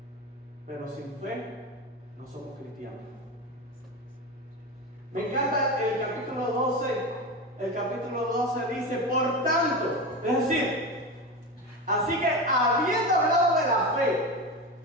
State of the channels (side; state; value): both; normal; correlation 0.22